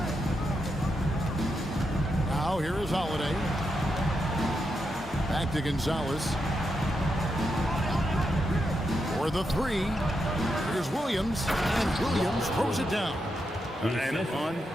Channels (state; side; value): normal; both; correlation 0.84